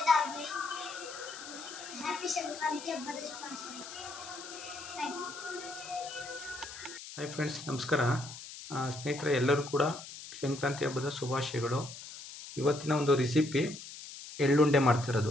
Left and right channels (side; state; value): left; noise; hiss, 12 dB below the sound